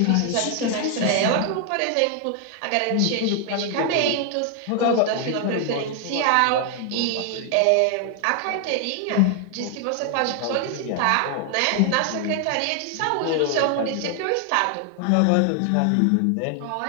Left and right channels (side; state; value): both; different; correlation 0.00